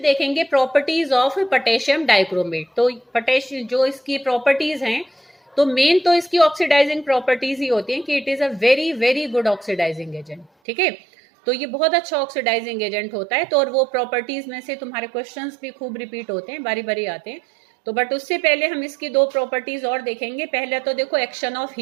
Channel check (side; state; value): left; drops out; at 10.5 s